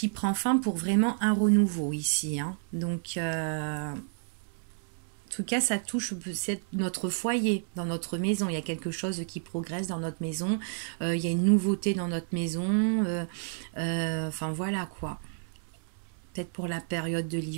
prend fin pour vraiment un renouveau ici. Hein. Donc, en tout cas, ça touche notre foyer, dans notre maison. Il y a quelque chose qui progresse dans notre maison. Il y a une nouveauté dans notre maison. Enfin, voilà quoi. Peut-être pour la période de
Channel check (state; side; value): silent; left; 58 dB below the other